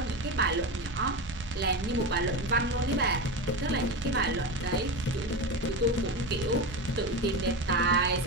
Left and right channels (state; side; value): normal; both; correlation 0.21